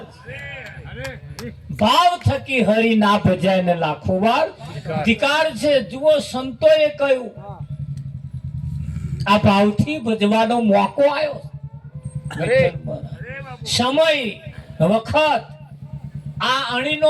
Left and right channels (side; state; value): both; identical; correlation 1.00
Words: ભાવ થકી હરી ના ભજાય ને લાખો વાર ધિકાર છે જુઓ સંતોએ કહ્યું આ ભાવથી ભજવાનો મોકો આવ્યો સમય વખત આ